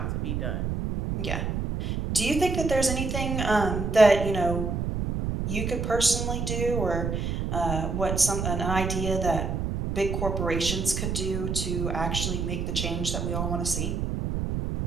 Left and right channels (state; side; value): noise; right; rumble, 2 dB below the sound